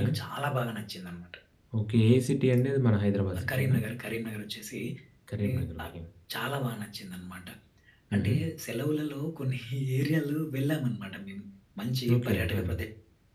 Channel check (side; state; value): both; identical; correlation 1.00